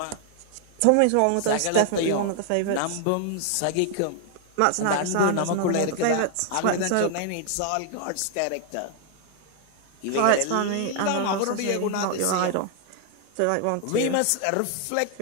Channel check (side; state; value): both; different; correlation 0.00